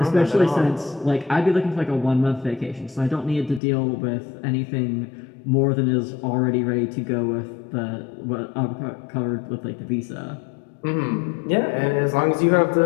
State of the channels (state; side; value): drops out; right; at 3.6 s